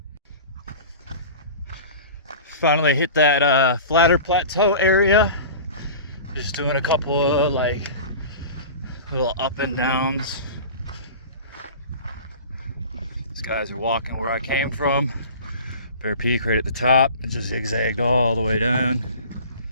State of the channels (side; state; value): both; inverted; correlation -0.37